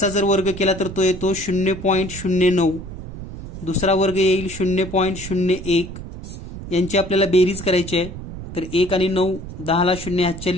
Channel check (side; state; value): right; noise; rumble, 11 dB below the sound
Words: जर वर्ग केला तर तो येतो 0.09. दुसरा वर्ग येईल 0.01. यांची आपल्याला बेरीज करायची आहे. तर 1 आणि 9 10ला 0